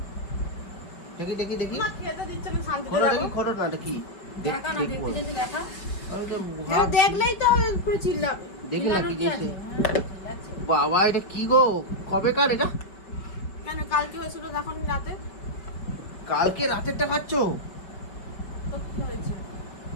দেখি দেখি দেখি, মা খেতে দিচ্ছে না, শান্তিতে খোলো যাবো। দেখি, খোলো না, এটা কি? দেখা না, দেখতে যেতে দেখা। আমি তো এটা দেখলেই তো হবে, পুরো চিল্লাবে। দেখি না কি চিল্লানোর কি আছে? দিয়েছে। হ্যাঁ, চিল্লাচ্ছে। বাবা, এটা কি গো? কবেকার এটা? কেন কালকে হয়েছিল তখন রাতে? কালকে রাতেরটা খাচ্ছ? তো কি হয়েছে?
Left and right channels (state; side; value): late; right; 5.5 ms